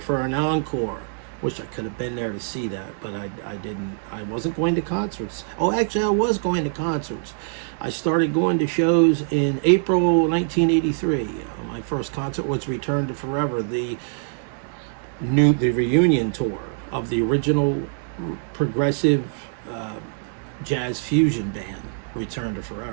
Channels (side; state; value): left; silent; digital silence